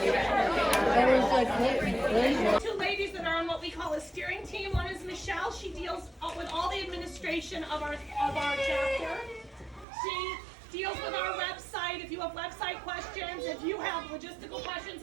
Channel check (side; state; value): left; drops out; at 9.9 s